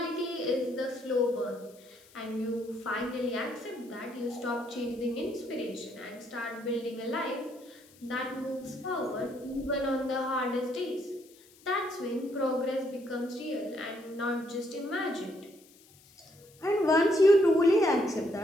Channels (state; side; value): noise; left; hiss, 26 dB below the sound